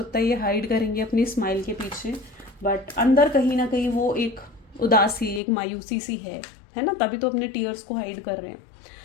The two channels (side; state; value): right; drops out; at 5.4 s